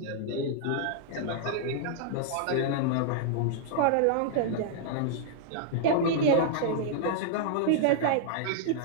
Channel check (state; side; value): different; both; correlation -0.01